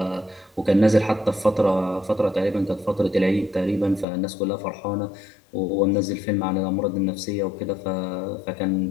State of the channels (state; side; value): drops out; right; at 4.0 s